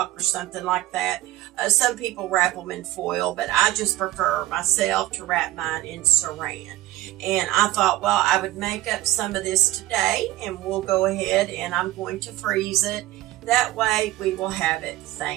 or something like that. Some people wrap them in foil, but I just prefer myself to wrap mine in saran. And I thought, well, I would make up some of this today, and we'll go ahead and I'm going to freeze it. That way we will have it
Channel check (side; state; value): left; quieter; 15.9 dB